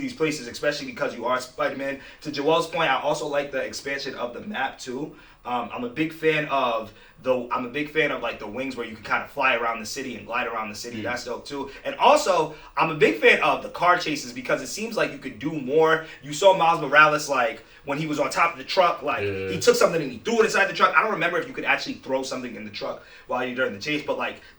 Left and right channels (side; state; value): both; identical; correlation 1.00